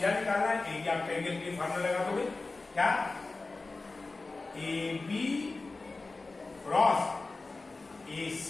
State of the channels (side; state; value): right; quieter; 3.5 dB